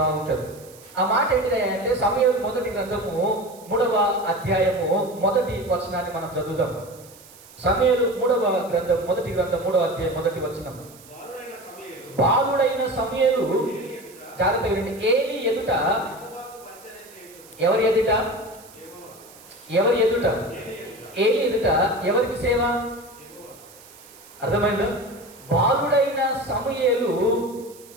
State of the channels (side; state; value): right; noise; hiss, 22 dB below the sound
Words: ఉంటుంది. ఆ మాట ఏంటిదంటే సమూయేలు 1వ గ్రంథము 3వ అధ్యాయము 1వ వచనాన్ని మనం చదువుదాం. సమూయేలు 3వ గ్రంథం 1వ గ్రంథం 3వ అధ్యాయం 1వ వచనం. బాలుడైన సమూయేలు, జాగ్రత్త వినండి, ఏలీ ఎదుట, ఎవరి ఎదుట? ఏలి ఎదుట ఎవరికి సేవ? అర్థమైందా? బాలుడైన సమూయేలు